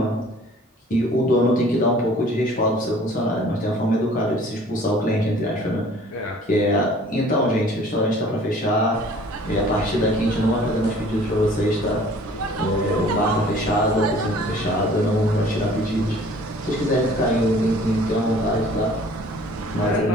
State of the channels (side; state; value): both; normal; correlation 0.51